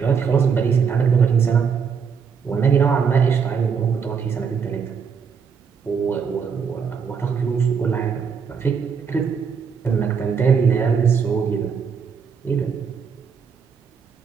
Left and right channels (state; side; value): quieter; left; 6.4 dB